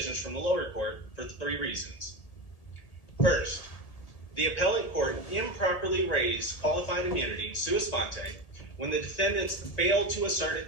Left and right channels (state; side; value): late; right; 1.8 ms